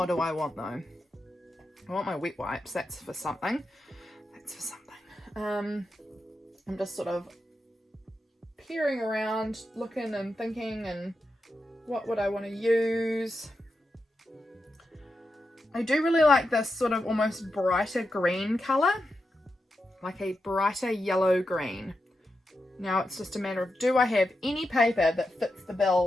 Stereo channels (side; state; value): both; normal; correlation 0.88